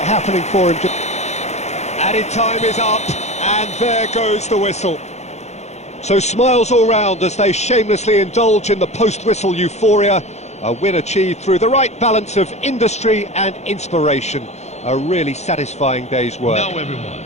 happening for him. Added time is up, and there goes the whistle. So smiles all round as they shamelessly indulge in the post-whistle euphoria. A win achieved through the right balance of industry and inspiration. A really satisfying day's work. Now everyone,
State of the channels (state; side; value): late; right; 0.32 ms